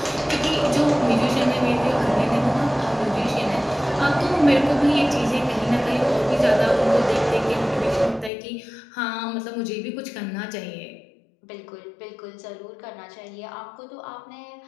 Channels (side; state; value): right; drops out; at 8.3 s